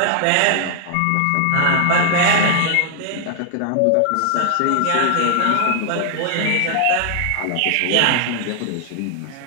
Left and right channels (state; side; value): different; both; correlation 0.00